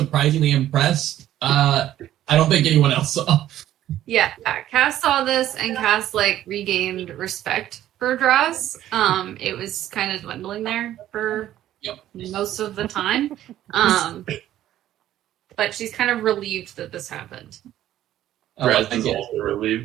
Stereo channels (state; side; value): quieter; left; 12.7 dB